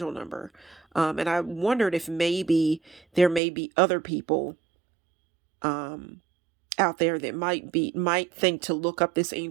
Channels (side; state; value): left; drops out; at 3.4 s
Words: number. And I wondered if maybe there may be other people out there that might think to look up this